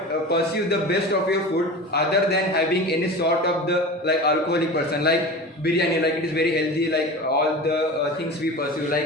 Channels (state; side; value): normal; both; correlation 0.32